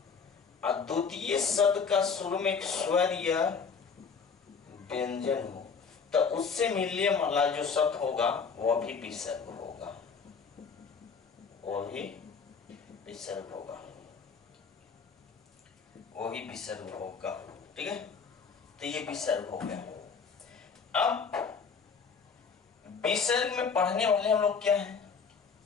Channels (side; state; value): right; quieter; 5.6 dB